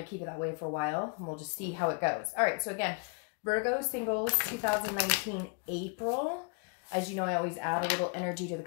to keep it that way for a while, and we'll just see how it goes. All right, so again, Virgo Singles 2019 April. As you know, I always add a little energy to the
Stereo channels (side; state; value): right; quieter; 35.6 dB